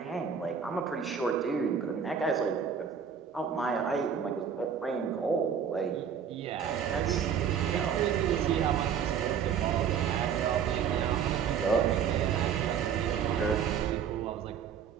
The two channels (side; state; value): left; quieter; 7.5 dB